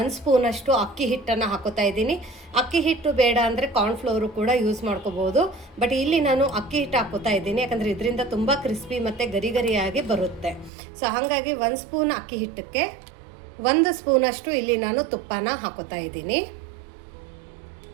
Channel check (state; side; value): drops out; left; at 10.7 s